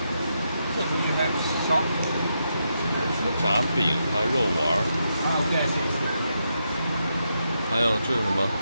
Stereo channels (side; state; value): both; inverted; correlation -0.83